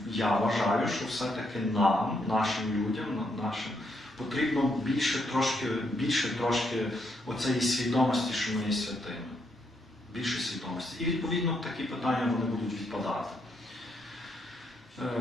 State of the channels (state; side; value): normal; both; correlation 0.77